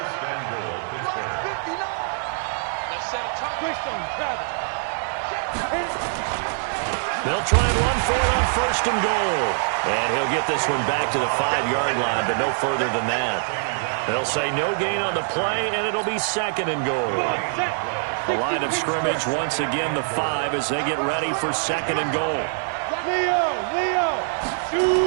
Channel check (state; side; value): silent; left; digital silence